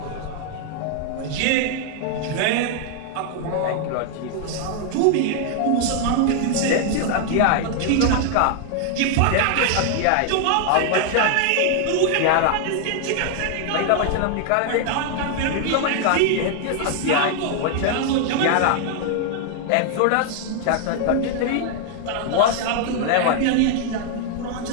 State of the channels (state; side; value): different; both; correlation 0.00